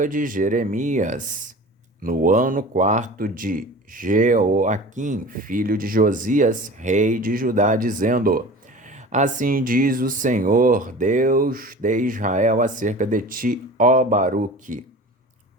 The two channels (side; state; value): both; normal; correlation 0.38